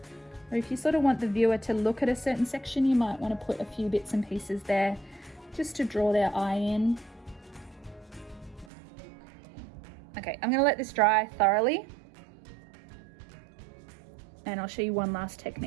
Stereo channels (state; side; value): drops out; left; at 8.7 s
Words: or if you sort of want the viewer to look at a certain section, you might want to put a few bits and pieces there just to draw their eye in. Okay, I'm going to let this dry thoroughly and I'll show you one last